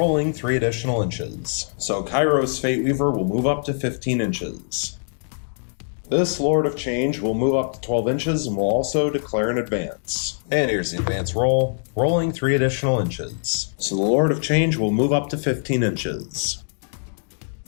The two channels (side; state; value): right; silent; digital silence